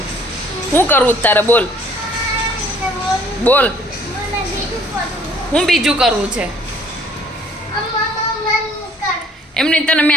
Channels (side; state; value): both; normal; correlation 0.58